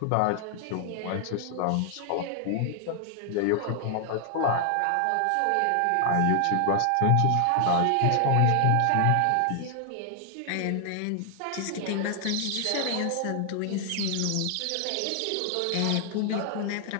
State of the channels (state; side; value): different; both; correlation 0.00